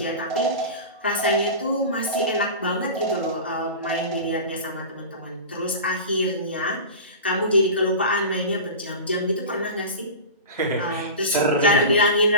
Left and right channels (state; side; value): inverted; both; correlation -0.30